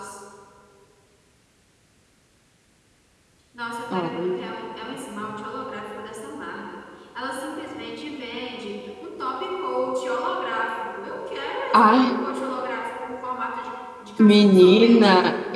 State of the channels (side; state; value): both; identical; correlation 1.00